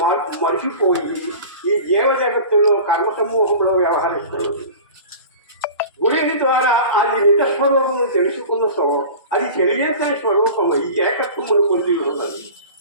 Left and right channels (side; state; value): both; inverted; correlation -0.37